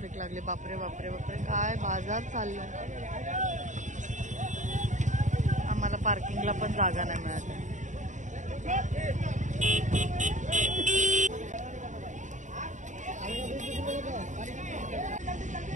लागली. बापरे बापरे बापरे, काय बाजार चाललाय. आम्हाला पार्किंगला पण जागा नाही मिळाली.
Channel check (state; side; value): late; left; 0.36 ms